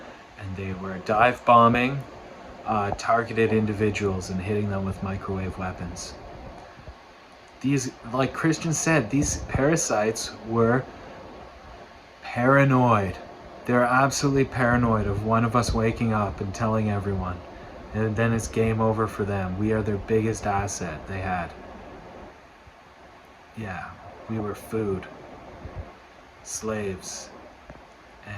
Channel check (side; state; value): both; identical; correlation 1.00